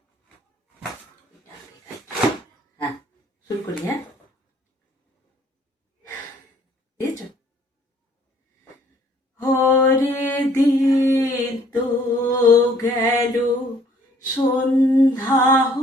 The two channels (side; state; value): both; normal; correlation 0.60